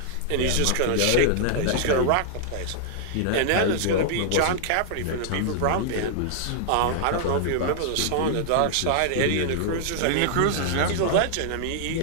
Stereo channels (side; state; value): both; different; correlation -0.01